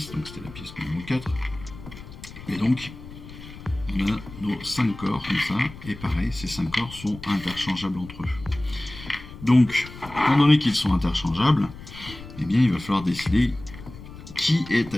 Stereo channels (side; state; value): left; noise; rumble, 15 dB below the sound